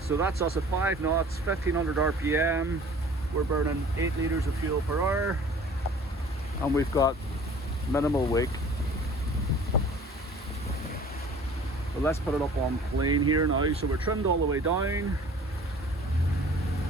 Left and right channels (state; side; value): normal; both; correlation 0.48